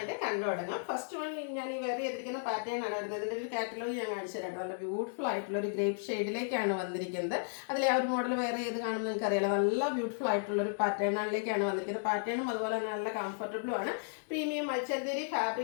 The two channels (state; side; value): silent; right; digital silence